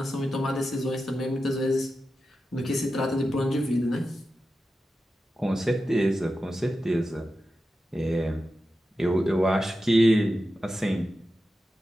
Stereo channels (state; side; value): normal; both; correlation 0.91